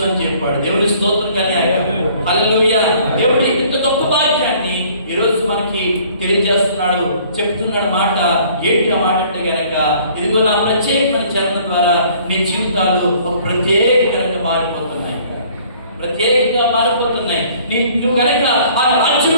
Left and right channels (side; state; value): both; inverted; correlation -0.56